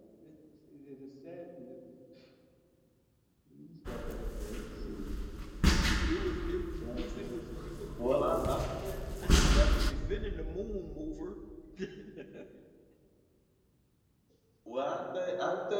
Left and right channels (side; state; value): both; identical; correlation 1.00